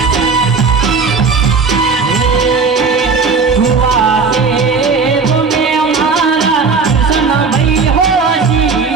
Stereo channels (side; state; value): left; quieter; 4.8 dB